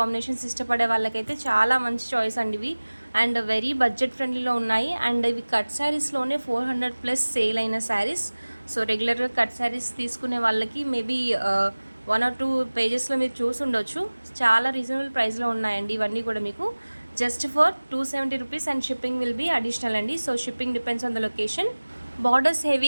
ఇష్టపడే వాళ్ళకైతే చాలా మంచి చాయిస్ అండి ఇవి. అండ్ వెరీ బడ్జెట్ ఫ్రెండ్లీలో ఉన్నాయి. అండ్ ఇవి కట్ శారీస్లోనే 400+ సేల్ అయిన శారీస్. సో రెగ్యులర్గా కట్ శారీస్ తీసుకునే వాళ్ళకి మేబీ 1 or 2 పేజెస్లో మీరు చూసి ఉండొచ్చు. చాలా రీజనబుల్ ప్రైస్లో ఉన్నాయండి ఇవన్నీ కూడా మీకు just for 270 rupees and shipping will be additional అండి. So shipping depends on the location. Borders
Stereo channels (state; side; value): inverted; both; correlation -1.00